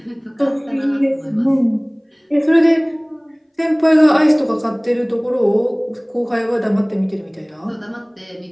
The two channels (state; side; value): identical; both; correlation 1.00